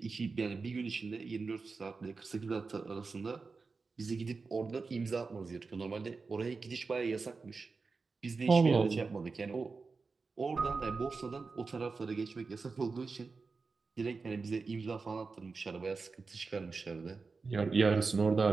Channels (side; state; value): left; quieter; 4.4 dB